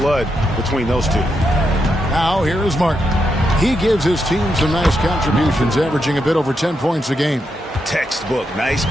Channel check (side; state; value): both; normal; correlation 0.83